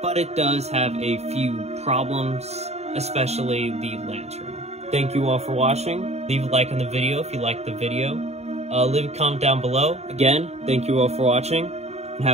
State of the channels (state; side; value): late; left; 0.31 ms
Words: it does have a few problems, especially the lantern. Thank you all for watching. Leave a like on the video if you liked the video. Leave a comment down below. Again, thank you all for watching, and